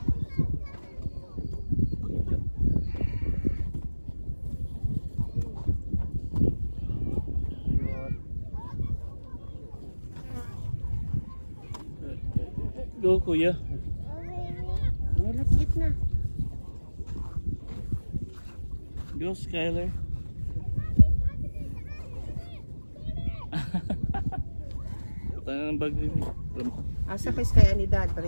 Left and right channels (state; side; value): inverted; both; correlation -1.00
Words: Go kuya. Let's eat na. Go Skyler. Tayo ng bag din. Asa kay Sky Anidad,